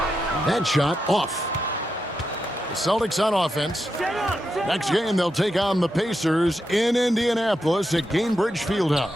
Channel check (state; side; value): normal; both; correlation 0.86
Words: That shot off. The Celtics on offense. Next game, they'll take on the Pacers in Indianapolis at Gainbridge